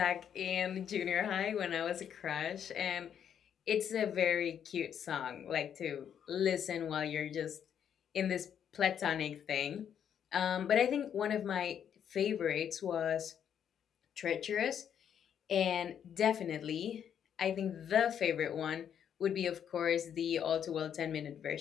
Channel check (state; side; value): quieter; right; 8.8 dB